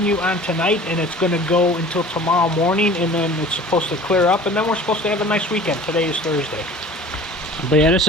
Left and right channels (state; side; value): normal; both; correlation 0.44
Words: on tonight, and it's going to go until tomorrow morning, and then it's supposed to clear up, and then we're supposed to have a nice weekend. Today is Thursday. But yeah, this